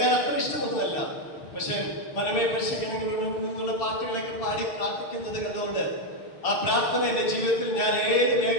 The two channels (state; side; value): late; right; 6.9 ms